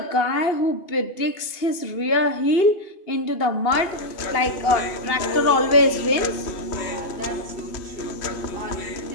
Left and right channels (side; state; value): right; late; 2.8 ms